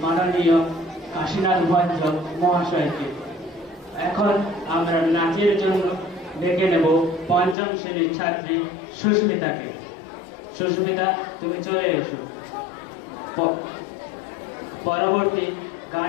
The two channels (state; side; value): drops out; right; at 7.6 s